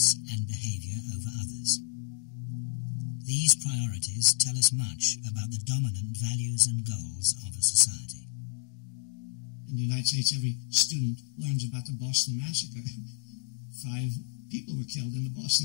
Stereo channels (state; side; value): silent; right; digital silence